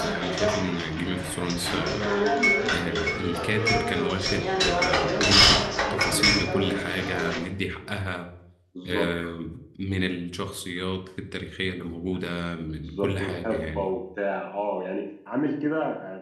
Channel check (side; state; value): both; identical; correlation 1.00